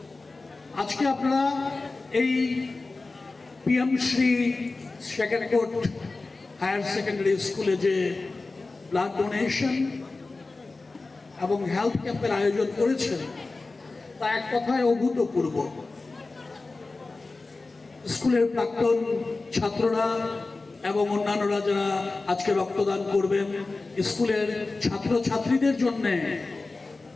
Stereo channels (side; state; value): right; quieter; 3.5 dB